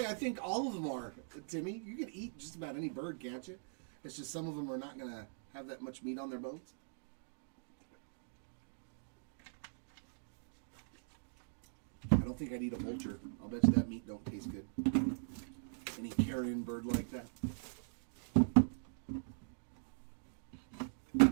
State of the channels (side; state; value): left; silent; digital silence